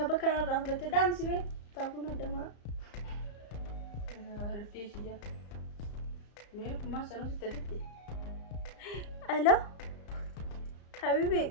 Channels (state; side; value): late; right; 34 ms